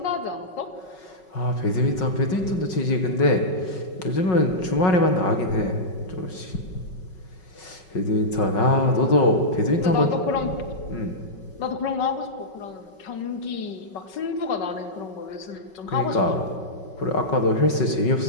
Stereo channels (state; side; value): late; right; 5.3 ms